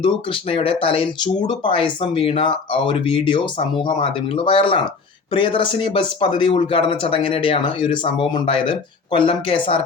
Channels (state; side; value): quieter; right; 4.7 dB